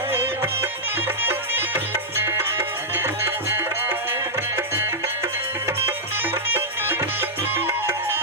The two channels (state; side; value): normal; both; correlation -0.09